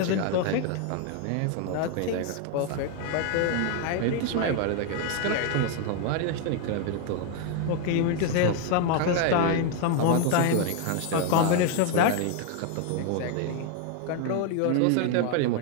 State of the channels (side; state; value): both; different; correlation 0.00